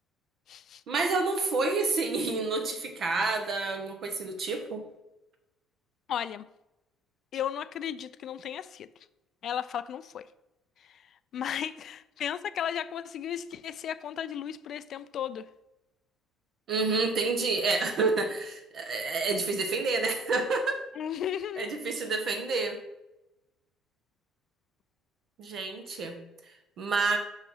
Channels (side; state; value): both; normal; correlation 0.55